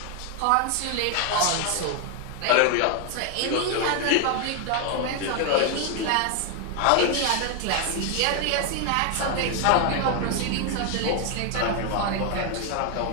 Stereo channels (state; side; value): different; both; correlation 0.01